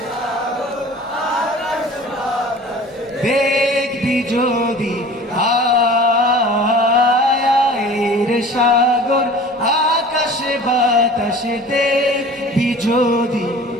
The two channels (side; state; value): both; normal; correlation 0.43